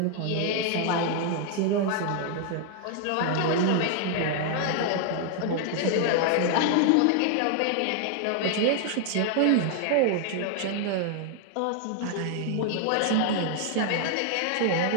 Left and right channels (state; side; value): different; both; correlation 0.00